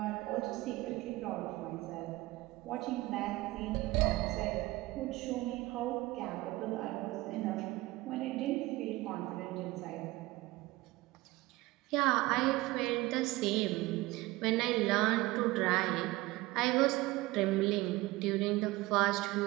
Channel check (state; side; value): quieter; left; 19.9 dB